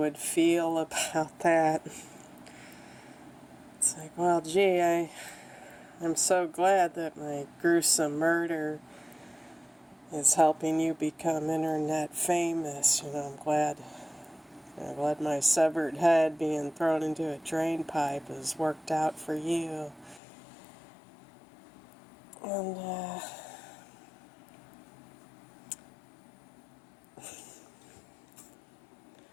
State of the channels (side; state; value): right; drops out; at 20.2 s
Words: feel about that. It's like, well, gee, I'm so glad that my gruesome murder is helping you become internet famous. I'm glad my severed head being thrown into a drain pipe has worked out for you. And,